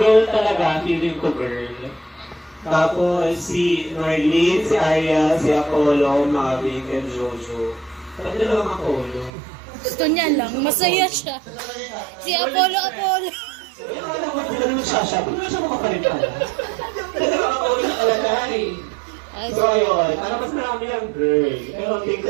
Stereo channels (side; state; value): left; drops out; at 9.3 s